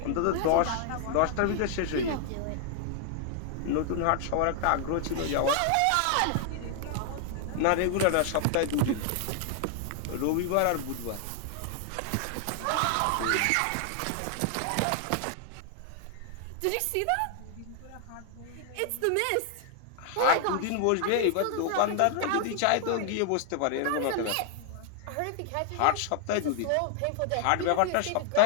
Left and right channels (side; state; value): both; different; correlation 0.00